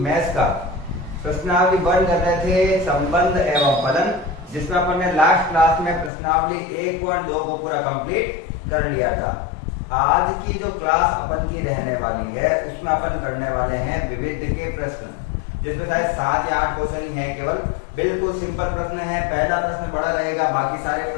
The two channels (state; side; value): drops out; right; at 6.1 s